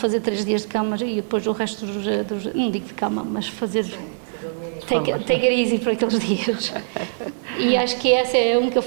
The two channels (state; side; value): silent; left; digital silence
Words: 3 dias de cama e depois o resto não digo de cama, mas fazer take it easy para aqueles dias. E acho que essa é a única